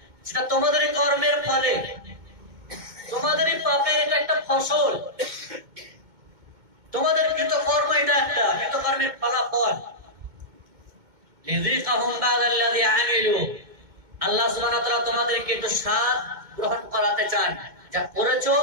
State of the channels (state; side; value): late; left; 2.2 ms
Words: সেটা তোমাদেরই কর্মের ফলে, তোমাদেরই পাপে, এটা একটা ফসল, তোমাদের কৃতকর্ম, এটা একটা কৃতকর্মের ফলাফল। লিযিকাহুম বা'দাল্লাযী আমিলু, আল্লাহ সুবহানাহু ওয়া তাআলা তোমাদেরকে একটু স্বাদ গ্রহণ করাতে চান, যা করেছো